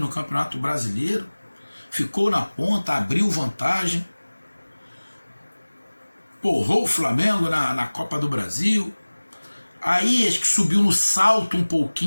Campeonato Brasileiro. Ficou na ponta, abriu vantagem. Porrou o Flamengo na Copa do Brasil. Aí acho que subiu no salto um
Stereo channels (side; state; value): both; inverted; correlation -1.00